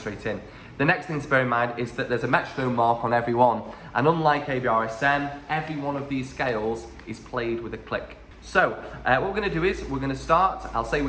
in. The next thing to bear in mind is that there's a metronome mark on every one, and unlike ABRSM, every one of these scales is played with a click. So what we're going to do is we're going to start. I'll say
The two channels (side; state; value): both; identical; correlation 1.00